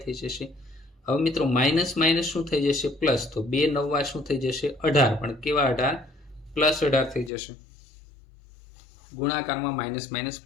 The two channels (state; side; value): drops out; right; at 7.3 s